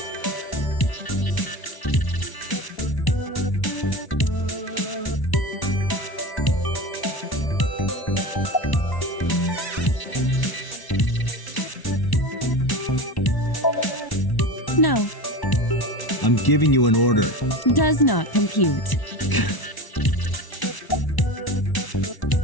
No, I'm giving you an order. does not compute.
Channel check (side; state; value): right; late; 1.0 ms